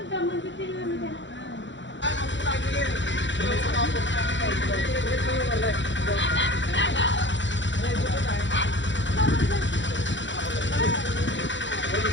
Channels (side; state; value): right; late; 0.54 ms